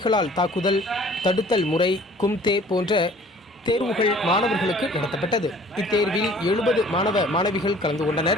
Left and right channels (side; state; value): both; normal; correlation 0.52